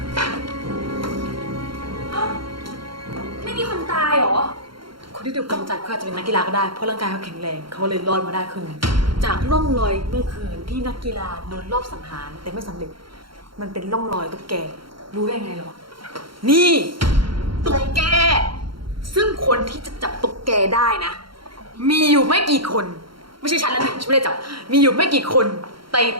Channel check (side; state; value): left; late; 0.73 ms